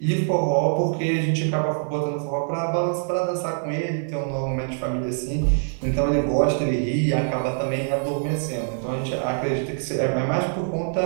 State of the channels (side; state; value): left; silent; 56 dB below the other